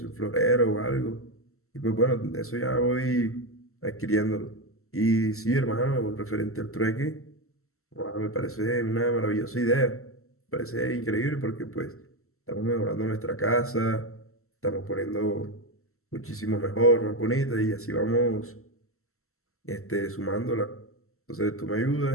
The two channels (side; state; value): right; late; 0.63 ms